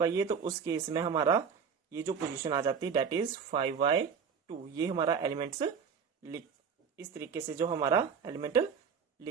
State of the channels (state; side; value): quieter; left; 6.5 dB